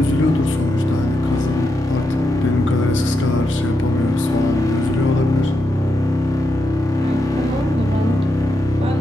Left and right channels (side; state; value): both; normal; correlation 0.84